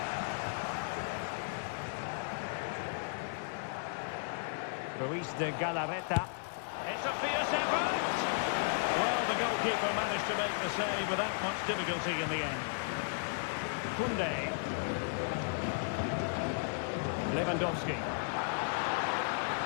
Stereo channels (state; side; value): silent; right; digital silence